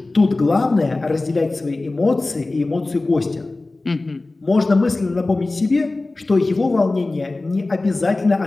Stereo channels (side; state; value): right; quieter; 3.1 dB